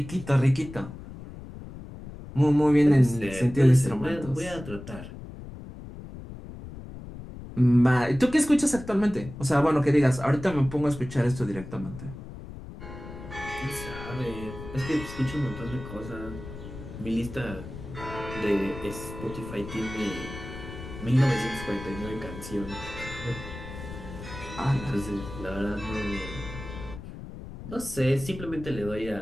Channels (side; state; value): left; noise; rumble, 12 dB below the sound